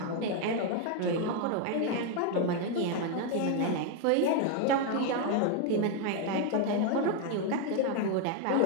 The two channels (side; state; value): both; different; correlation 0.01